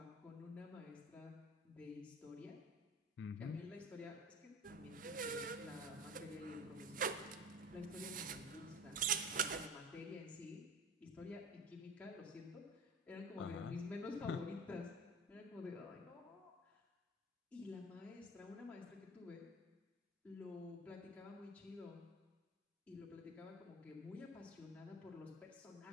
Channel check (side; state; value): both; normal; correlation 0.35